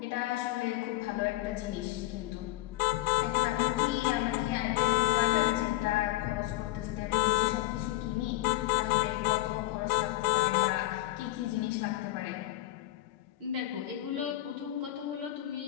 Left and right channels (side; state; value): right; quieter; 16.9 dB